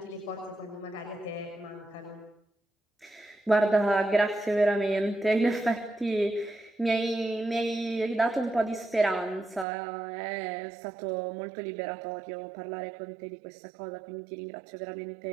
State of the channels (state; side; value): drops out; left; at 9.7 s